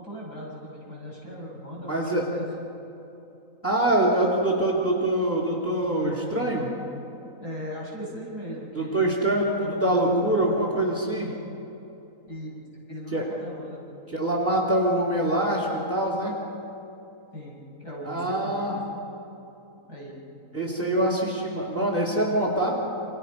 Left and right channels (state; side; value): late; right; 3.9 ms